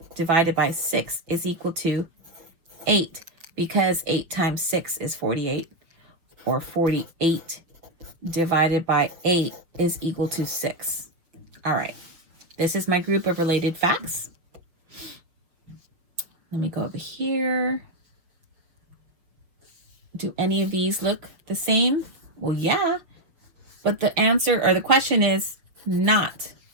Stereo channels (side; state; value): left; late; 6.3 ms